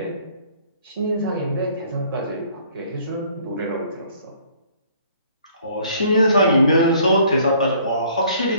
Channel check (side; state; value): both; inverted; correlation -0.58